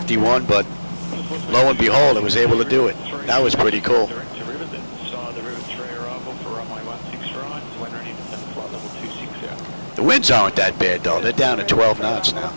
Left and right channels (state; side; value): inverted; both; correlation -1.00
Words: but lo and behold, I was able to do it. That was pretty cool. The winds aren't that bad, though. They're down to 12 knots now.